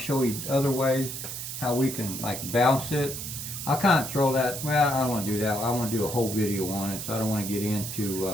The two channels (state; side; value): noise; right; hiss, 7 dB below the sound